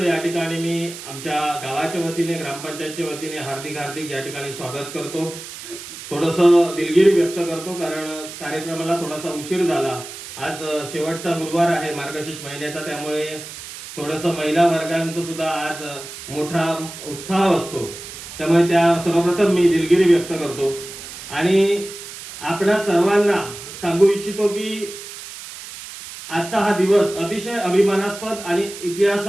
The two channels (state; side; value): noise; right; hiss, 12 dB below the sound